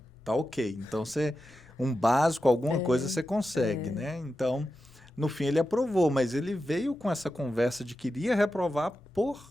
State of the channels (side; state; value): both; normal; correlation 0.91